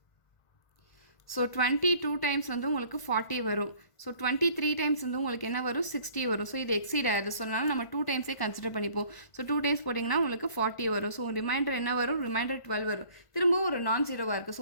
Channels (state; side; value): late; right; 1.5 ms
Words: ஸோ 22 டைம்ஸ் வந்து உங்களுக்கு 40 வரும். ஸோ 23 டைம்ஸ் வந்து உங்களுக்கு என்ன வரும், 60 வரும். ஸோ இது எக்ஸீட் ஆகுது. ஸோ அதனால் நம்ம 2 டைம்ஸே கன்சிடர் பண்ணிப்போம். ஸோ 2 டைம்ஸ் போட்டிங்கன்னா உங்களுக்கு 40 வரும். ஸோ ரிமைண்டர் என்ன வரும், ரிமைண்டர் 12 வரும். திரும்பவும் ஒரு நான் 0வாக இருக்குது.